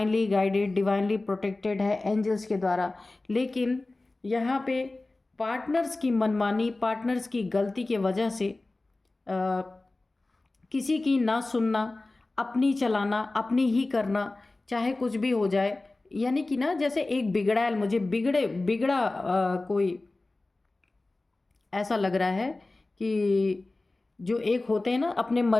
गाइडेड, डिवाइनली प्रोटेक्टेड है एंजल्स के द्वारा। लेकिन यहाँ पे पार्टनर्स की मनमानी, पार्टनर्स की गलती के वजह से किसी की ना सुनना, अपनी चलाना, अपनी ही करना, चाहे कुछ भी हो जाए, यानी कि ना जैसे एक बिगड़ा बिगड़ा कोई ऐसा लग रहा है कि जो एक होते हैं ना अपने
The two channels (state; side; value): quieter; right; 3.1 dB